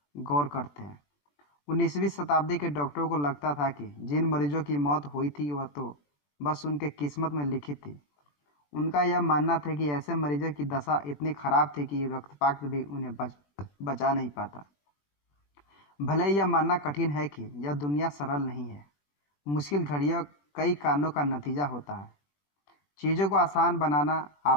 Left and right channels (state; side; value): late; right; 21 ms